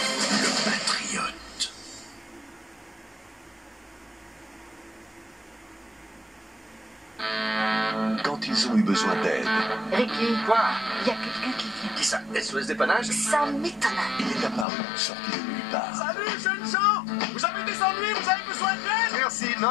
patriote. Quand ils ont eu besoin d'aide, Ricky, Quoi? il y a quelqu'un qui vient. Qui ça? SOS dépannage? Ça m'étonne. il est apparu, sorti de nulle part. Salut, jeunes gens! Vous avez des ennuis? Vous avez besoin d'aide? Merci,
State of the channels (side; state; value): right; drops out; at 14.7 s